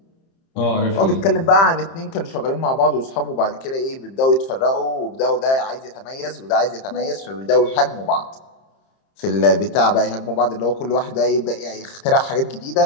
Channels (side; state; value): right; late; 30 ms